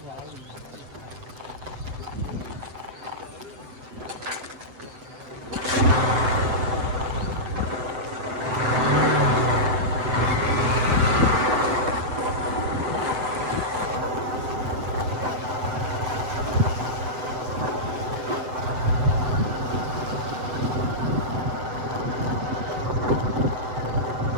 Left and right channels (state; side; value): late; left; 7.9 ms